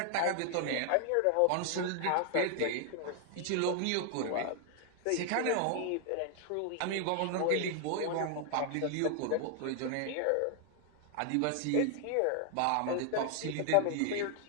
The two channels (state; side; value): different; both; correlation 0.00